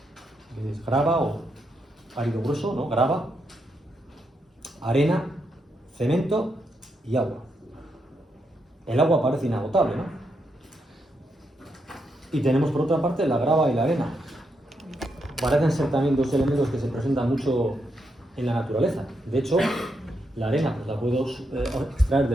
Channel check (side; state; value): both; normal; correlation 0.81